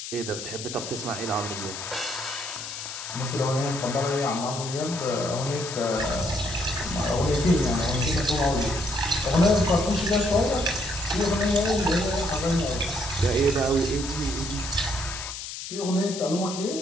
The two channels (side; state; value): left; noise; hiss, 8 dB below the sound